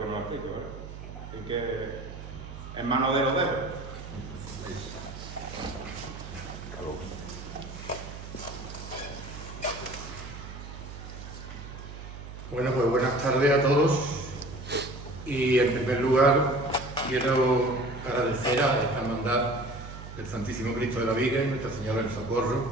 nos explique, ¿verdad? Así que, en manos de los dedos. Bueno, pues buenas tardes a todos, y en primer lugar quiero agradecer a esta hermandad del Santísimo Cristo de la Viga y Nuestra Señora del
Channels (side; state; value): right; noise; hum, 11 dB below the sound